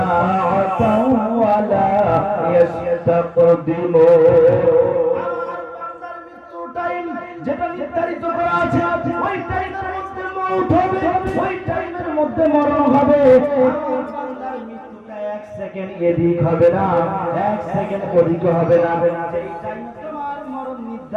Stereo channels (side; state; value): both; identical; correlation 1.00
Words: ওয়া লা ইস্তাকদিমুন। আমার বান্দার মৃত্যু টাইম যেটা নির্ধারিত করা আছে ওই টাইমের মধ্যে মওত হবে, ওই টাইমের মধ্যে মরণ হবে। আমার বান্দার মৃত্যুটা এক সেকেন্ড এদিক হবে না, এক সেকেন্ড ওদিক হবে না। যেই টাইম তোমার মরণ